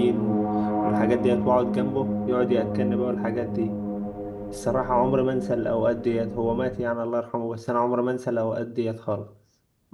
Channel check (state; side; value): identical; both; correlation 1.00